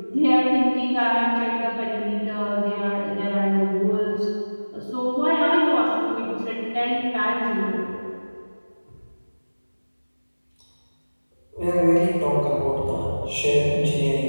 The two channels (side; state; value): both; inverted; correlation -1.00